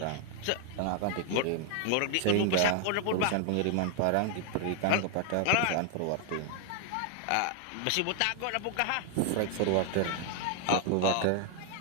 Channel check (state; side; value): different; both; correlation 0.00